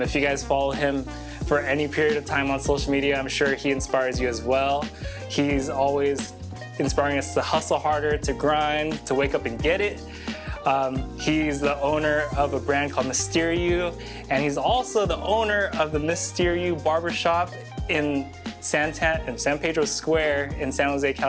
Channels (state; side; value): identical; both; correlation 1.00